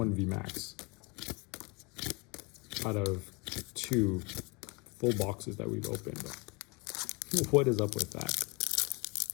VMAX out of 2 full boxes that we've opened. What is up with that?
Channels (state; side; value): quieter; right; 28.4 dB